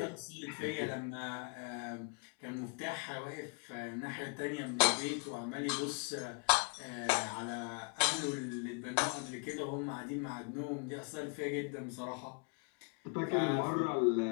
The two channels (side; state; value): right; quieter; 35.4 dB